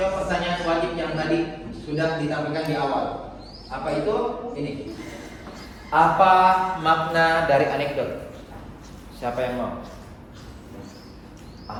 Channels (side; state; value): both; identical; correlation 1.00